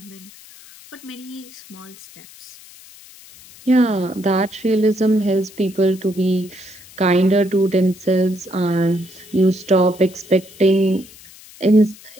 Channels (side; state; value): left; noise; hiss, 21 dB below the sound